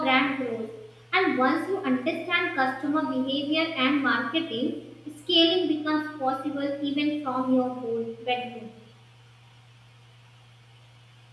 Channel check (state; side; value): identical; both; correlation 1.00